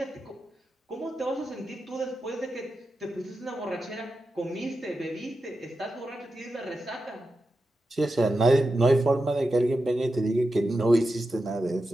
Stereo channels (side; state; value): both; normal; correlation 0.90